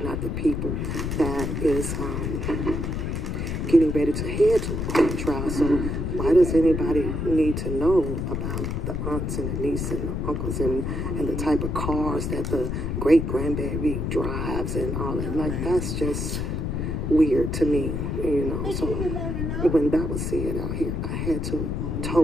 not the people that is getting ready to head to a court trial. So why does anybody need to know about the aunts and the nieces and the uncles and the type of cars that the great-grandbaby drives and all that? Like, that's just weird to me, you know. So when that was said out here, I had to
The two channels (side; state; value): left; noise; rumble, 2 dB below the sound